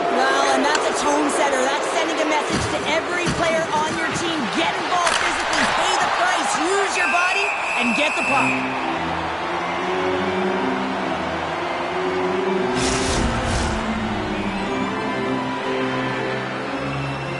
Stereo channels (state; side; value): identical; both; correlation 1.00